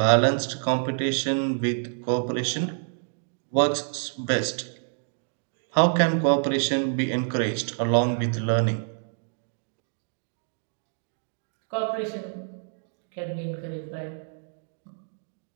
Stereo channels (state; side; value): silent; left; digital silence